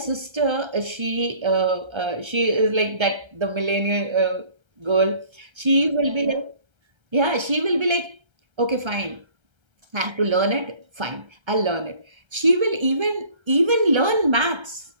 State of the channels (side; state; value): left; late; 1.3 ms